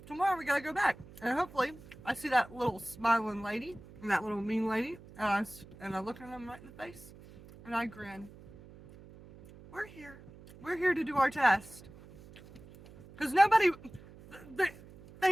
tomorrow we gotta go back. And hopefully I see that little smiling lady and that little mean lady, and I look at them right in the face and I grin. We're here to do our test. Because they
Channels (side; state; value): right; noise; hum, 20 dB below the sound